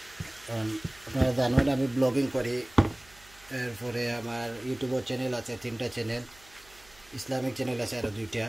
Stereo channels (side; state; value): right; noise; hum, 26 dB below the sound